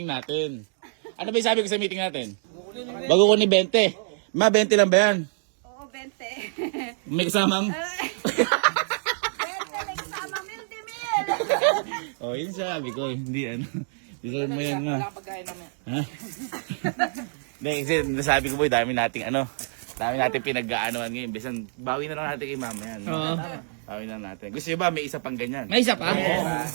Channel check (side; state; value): left; silent; digital silence